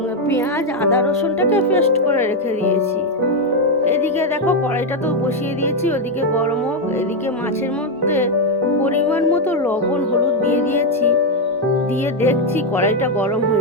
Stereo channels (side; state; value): both; normal; correlation 0.03